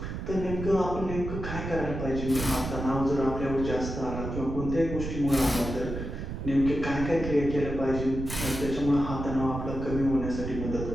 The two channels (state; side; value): noise; right; rumble, 6 dB below the sound